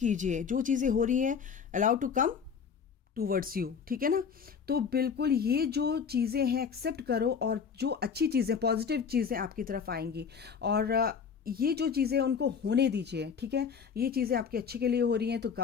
जो चीज़ें हो रही हैं allow to come towards you, ठीक है ना। तो बिल्कुल ये जो चीज़ें हैं एक्सेप्ट करो, और जो अच्छी चीज़ें, पॉजिटिव चीज़ें आपकी तरफ आएंगी, और ये जो चीज़ें उनको होने दीजिए, ठीक है। ये चीज़ें आपके अच्छे के लिए हो रही हैं, तो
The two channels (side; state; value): right; quieter; 6.5 dB